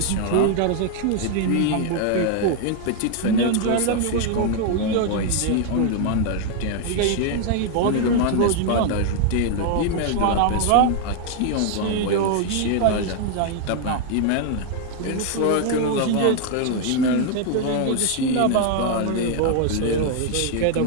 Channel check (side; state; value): both; different; correlation 0.00